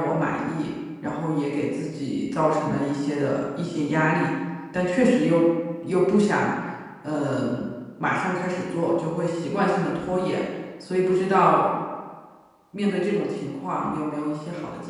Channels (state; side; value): identical; both; correlation 1.00